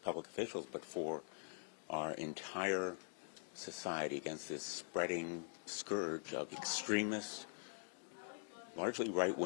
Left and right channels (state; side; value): silent; right; digital silence